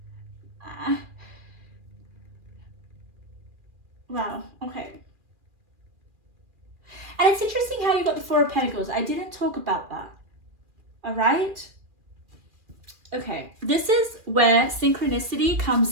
Wow, okay. And it's interesting how you got the 4 of Pentacles. I didn't talk about that, all right? Okay, this is where synchronicity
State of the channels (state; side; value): late; left; 2.4 ms